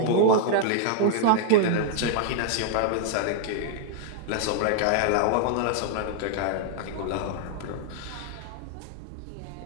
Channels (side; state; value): both; different; correlation 0.00